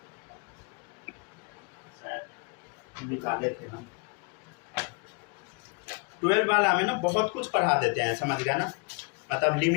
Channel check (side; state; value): right; quieter; 33.3 dB